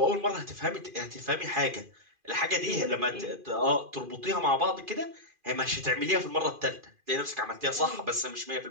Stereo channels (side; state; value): left; late; 2.4 ms